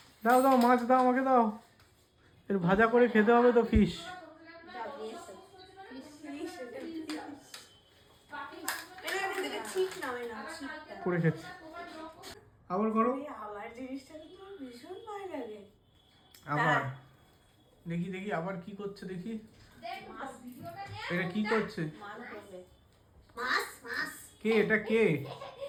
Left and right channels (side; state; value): both; identical; correlation 1.00